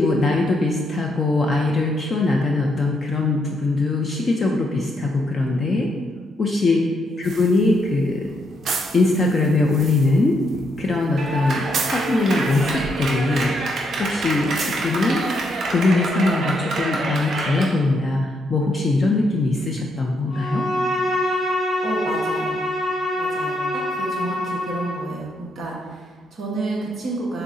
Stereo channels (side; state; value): both; normal; correlation 0.77